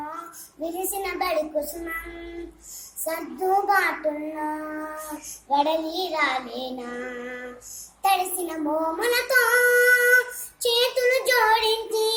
విరిసిన బడి కుసుమం సర్దుబాటుల్లో వడలి రాలేనా. తడిసిన మోములతో చేతులు జోడించి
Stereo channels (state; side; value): identical; both; correlation 1.00